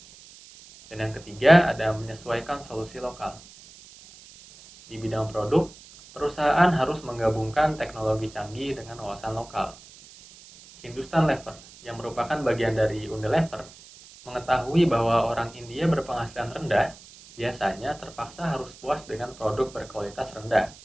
Dan yang ketiga ada menyesuaikan solusi lokal. Di bidang produk, perusahaan harus menggabungkan teknologi canggih dengan wawasan lokal. Hindustan Lever, yang merupakan bagian dari Unilever, mengetahui bahwa orang India berpenghasilan rendah biasanya terpaksa harus puas dengan produk berkualitas rendah.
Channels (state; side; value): noise; right; hiss, 21 dB below the sound